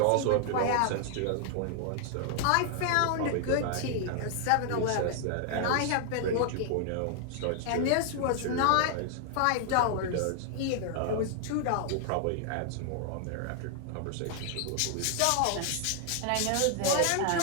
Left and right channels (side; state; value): both; different; correlation 0.00